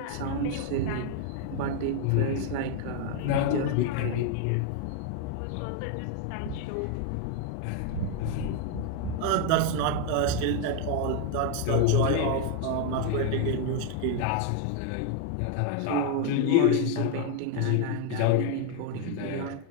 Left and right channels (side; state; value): both; different; correlation 0.01